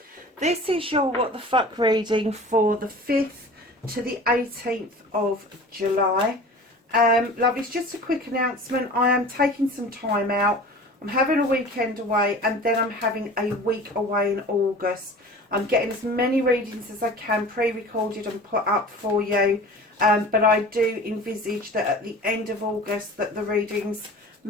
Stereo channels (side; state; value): both; normal; correlation 0.40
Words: This is your What the Fuck reading for the 5th to the 18th of July. Lovelies, just a quick announcement. I am taking some time out. I'm having a weekend away and then I'm having a week away in August. I'm getting as many readings as I can pre-recorded and put up for you. But I do envisage that at the end of August that the readings